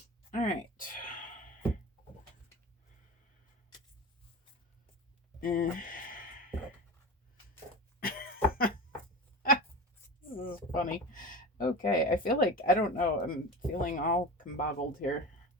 All right. This is funny. Okay, I feel like, I don't know, I'm feeling all combobbled here.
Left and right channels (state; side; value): normal; both; correlation 0.30